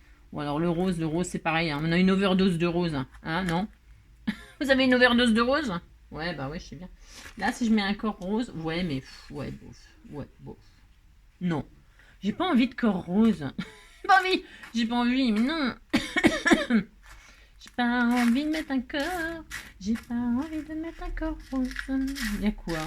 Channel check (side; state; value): both; identical; correlation 1.00